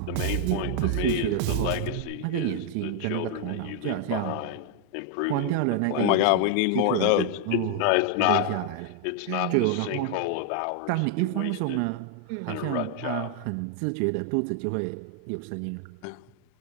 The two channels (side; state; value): both; different; correlation 0.00